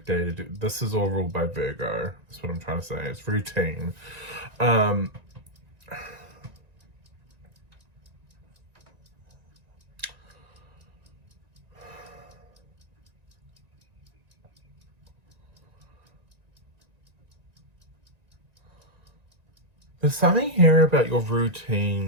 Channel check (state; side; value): late; left; 1.9 ms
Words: day to do. This is all ruled by Virgo. That's what I'm trying to say. It's routine. There's something here about your